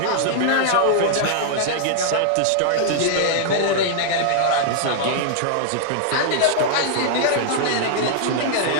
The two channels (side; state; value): both; different; correlation -0.01